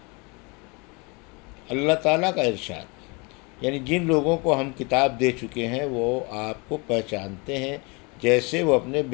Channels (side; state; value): right; quieter; 29.3 dB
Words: اللہ تعالیٰ کا ارشاد، یعنی جن لوگوں کو ہم کتاب دے چکے ہیں وہ آپ کو پہچانتے ہیں جیسے وہ اپنے